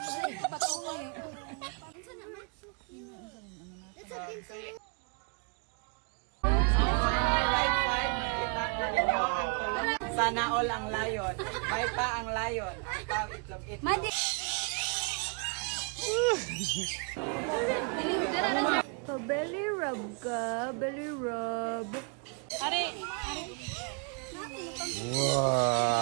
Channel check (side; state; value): left; quieter; 38.6 dB